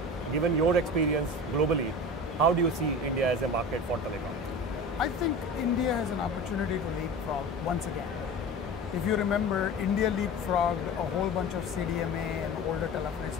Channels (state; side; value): normal; both; correlation 0.33